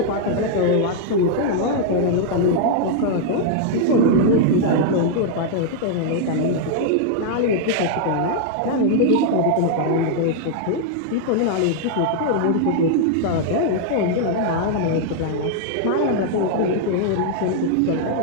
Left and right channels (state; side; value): different; both; correlation -0.01